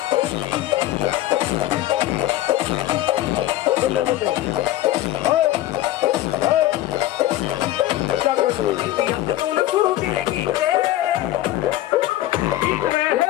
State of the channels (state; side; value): quieter; right; 14.7 dB